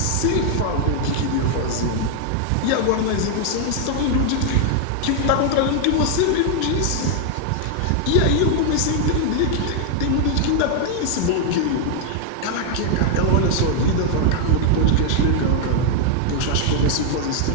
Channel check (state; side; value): different; both; correlation 0.00